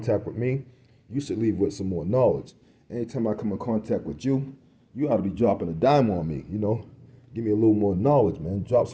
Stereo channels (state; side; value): identical; both; correlation 1.00